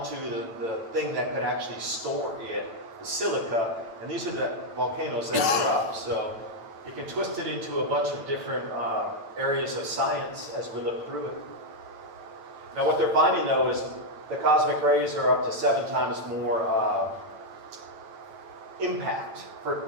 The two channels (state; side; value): late; left; 8.9 ms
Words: the thing that could actually store it, the silica, and these are the volcanoes that erupt. So you can twist it into a bunch of different areas of science as we look through it. Now what they're finding though is the cosmic rays are up to 7 times more impact